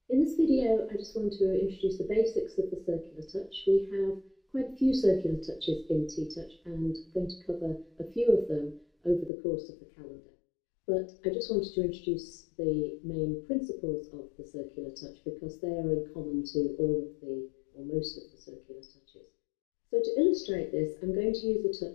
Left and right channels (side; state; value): right; drops out; at 9.3 s